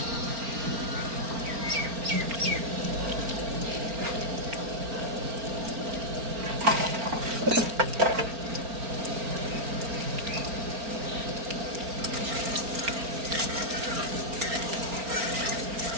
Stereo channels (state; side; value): late; left; 4.4 ms